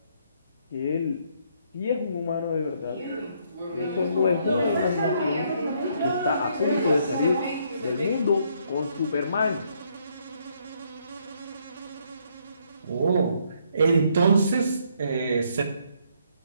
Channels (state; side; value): inverted; both; correlation -0.70